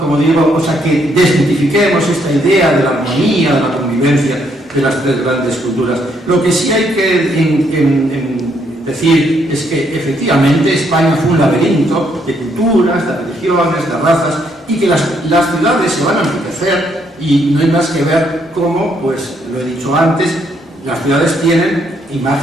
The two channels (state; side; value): normal; both; correlation 0.72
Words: digo, o sea, que desmitifiquemos esta idea de la armonía, de la convivencia de las tres grandes culturas. Lo que sí hay que decir es que efectivamente España fue un laberinto de culturas, de religiones, de razas, y que las ciudades se van a enriquecer, y no hay más que ver cómo, pues lo he dicho antes, las ciudades tienen